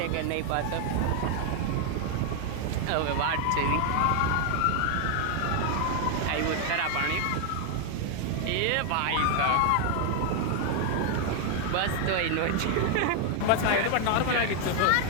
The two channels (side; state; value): both; different; correlation 0.00